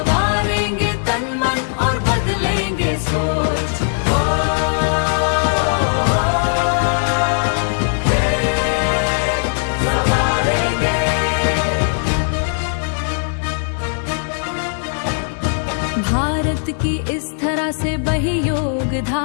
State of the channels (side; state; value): right; silent; 67 dB below the other